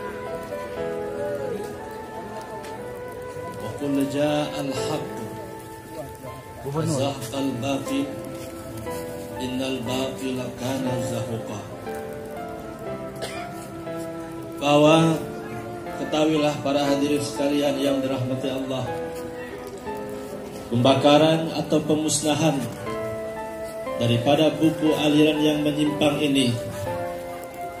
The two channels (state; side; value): identical; both; correlation 1.00